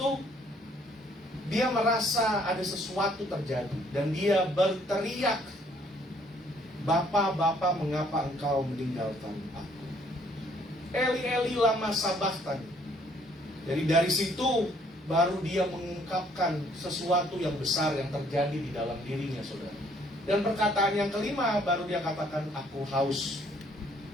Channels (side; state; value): both; normal; correlation 0.64